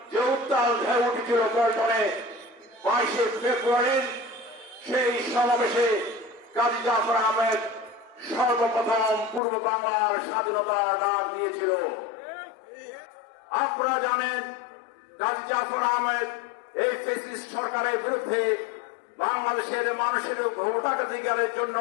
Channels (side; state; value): right; drops out; at 9.4 s